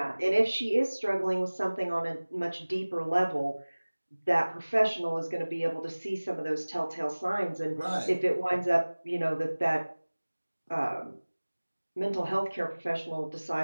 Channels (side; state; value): both; inverted; correlation -1.00